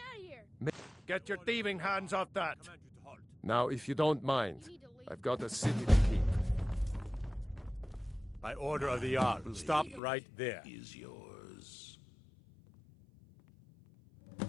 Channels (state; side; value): drops out; right; at 10.0 s